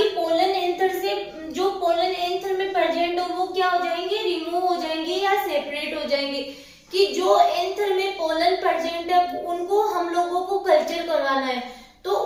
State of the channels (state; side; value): identical; both; correlation 1.00